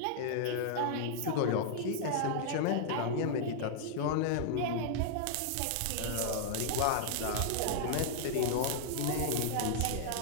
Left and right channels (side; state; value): both; different; correlation -0.01